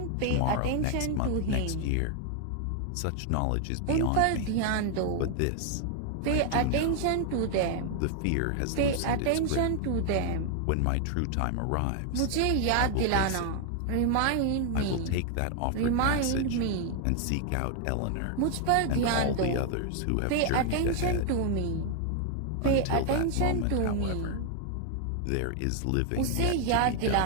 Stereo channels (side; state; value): both; different; correlation 0.00